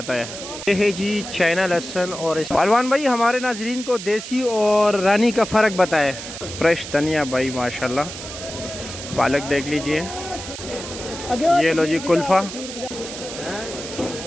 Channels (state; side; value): noise; right; hiss, 10 dB below the sound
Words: है। ये है जी चाइना लहसुन। और पहलवान भाई हमारे नाजरीन को देसी और रानी का फ़र्क बताए। फ्रेश धनिया भाई माशाल्लाह। पालक देख लीजिए, ये लो जी कुल्फ़ा।